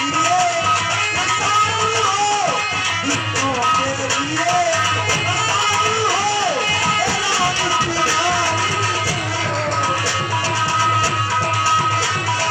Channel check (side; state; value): both; identical; correlation 1.00